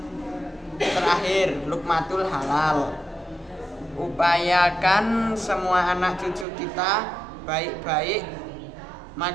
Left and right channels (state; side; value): drops out; left; at 6.5 s